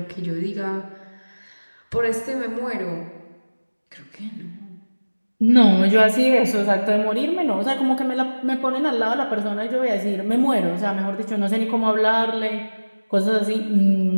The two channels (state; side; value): inverted; both; correlation -1.00